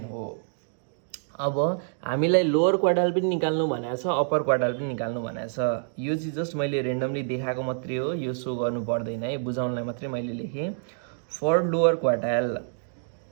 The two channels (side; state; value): left; silent; digital silence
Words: हो। अब हामीलाई लोअर क्वार्टाइल पनि निकाल्नु भनेको छ, अप्पर क्वार्टाइल पनि निकाल्नु भनेको छ। यो चाहिँ जस्ट मैले रेन्डमली देखाएको मात्रै हो, यो सो गर्नु पर्दैन है, बुझाउनलाई मात्रै मैले लेखेँ। For lower quartile,